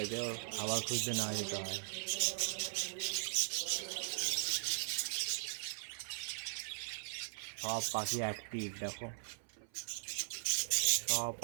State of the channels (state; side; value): silent; left; 51 dB below the other